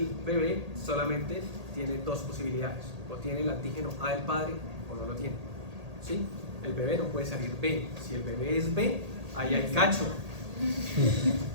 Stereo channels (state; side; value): late; left; 1.8 ms